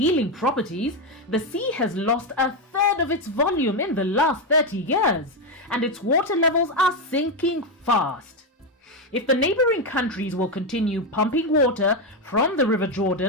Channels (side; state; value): both; normal; correlation 0.08